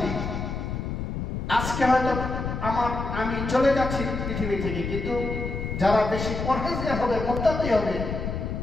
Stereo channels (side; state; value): left; noise; rumble, 4 dB below the sound